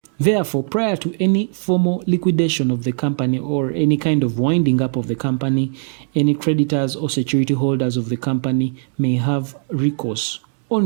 Therefore, prior to any formal liquidation of the company or any kind of winding up of the company, any creditors or security holders of the company may have recourse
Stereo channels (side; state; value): left; silent; digital silence